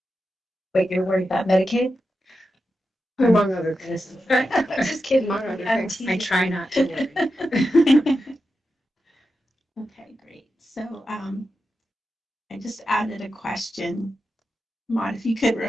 Wait, you're worried about Medicaid? Among other things. Just kidding. Among other things. I try not to worry. Okay, great. So I just added a question. Maud, if you could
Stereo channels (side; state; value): both; normal; correlation 0.89